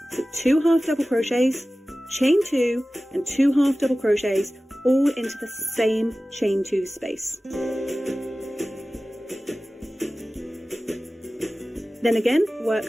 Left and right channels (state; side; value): normal; both; correlation 0.96